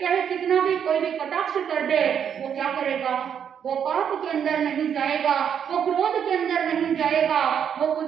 कितना भी कोई भी कटाक्ष कर दे, वो क्या करेगा, वो पाप के अंदर नहीं जाएगा, वो क्रोध के अंदर नहीं जाएगा, वो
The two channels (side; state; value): left; quieter; 8.2 dB